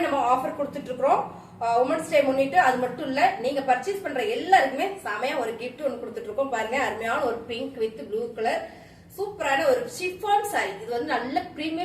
நம்ம ஆஃபர் கொடுத்துட்டு இருக்கிறோம் உமன்ஸ் டே முன்னிட்டு. அது மட்டும் இல்ல, நீங்க பர்ச்சேஸ் பண்ற எல்லாருக்குமே செமையா ஒரு கிஃப்ட் ஒன்று கொடுத்துட்டு இருக்கோம். பாருங்க, அருமையான ஒரு பிங்க் வித் ப்ளூ கலர் சூப்பரான ஒரு ஷிஃபான் சாரி. இது வந்து நல்ல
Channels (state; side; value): identical; both; correlation 1.00